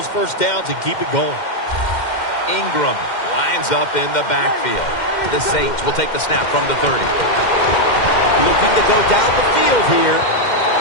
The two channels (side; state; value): right; late; 2.1 ms